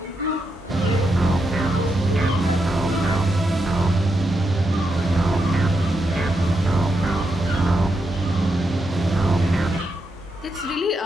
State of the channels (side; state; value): both; normal; correlation 0.84